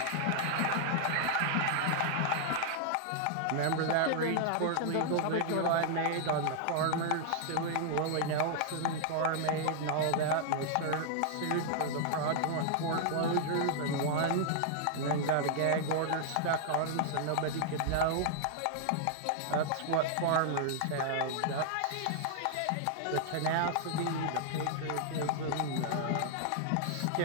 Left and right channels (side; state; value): both; different; correlation -0.01